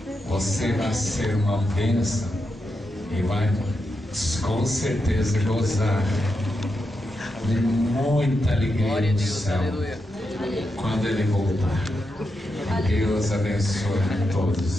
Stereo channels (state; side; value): normal; both; correlation 0.86